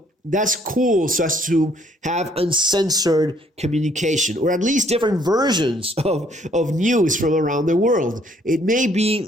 that's cool, so as to have uncensored communication, or at least different versions of news from around the world. It may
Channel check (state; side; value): normal; both; correlation 0.64